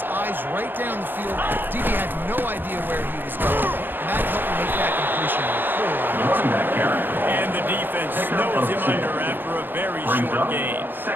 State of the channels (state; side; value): late; left; 0.095 ms